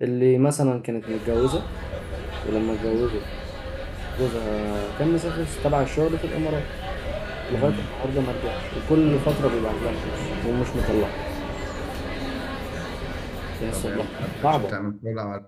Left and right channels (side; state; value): both; identical; correlation 1.00